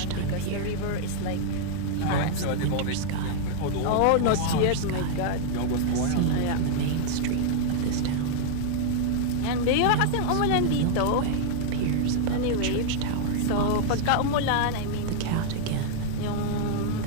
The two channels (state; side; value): different; both; correlation 0.00